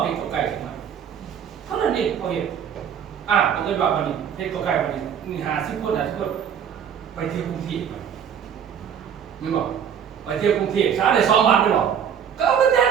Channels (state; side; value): quieter; left; 8.3 dB